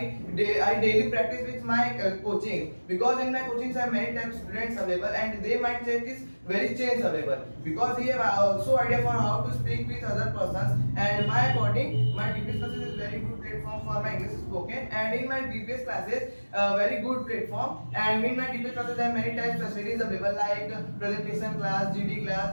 daily practice with my coaching because in my coachings I have many types of students available and their mindset is very change available because he have also idea for how to speak with other persons and my according my DPS classes is very good platform for my English spoken and in my DPS classes very good platform and in my DPS classes I have many types of facilities available like presentation class, GD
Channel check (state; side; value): inverted; both; correlation -1.00